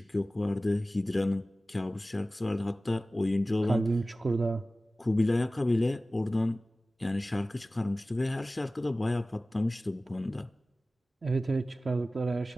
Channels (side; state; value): both; normal; correlation 0.96